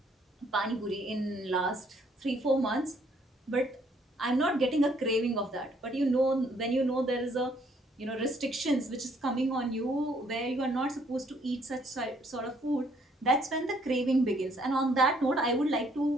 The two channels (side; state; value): both; normal; correlation 0.66